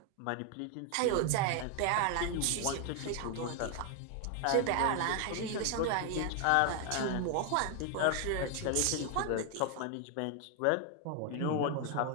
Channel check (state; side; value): different; both; correlation 0.00